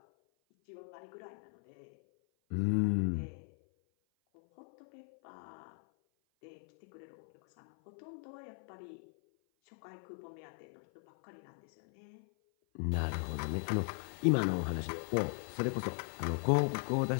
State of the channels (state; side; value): silent; right; 52 dB below the other